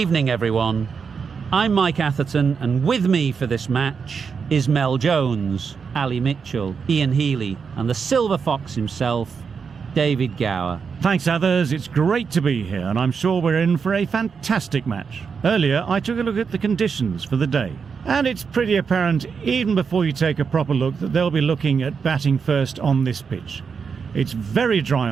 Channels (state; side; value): quieter; left; 5.9 dB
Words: everyone. I'm Mike Atherton, and with me for this match is Mel Jones, Ali Mitchell, Ian Healy, and the Silver Fox himself, David Gower. Thanks, others. It's great to be here, and I'm sure we're in for a fantastic match. Earlier, I took a look at the conditions for the day, and it's pretty apparent, even before you take a proper look, that they'll be looking at batting first on this pitch. It's very dry